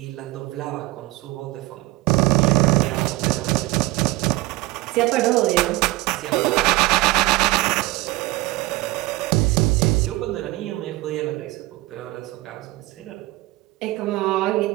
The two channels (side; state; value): left; quieter; 19.9 dB